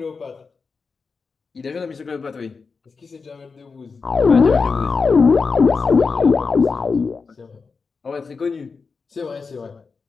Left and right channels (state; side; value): quieter; right; 4.9 dB